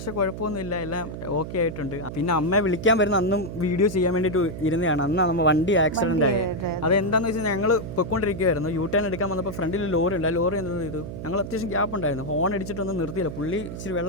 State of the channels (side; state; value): right; noise; hum, 8 dB below the sound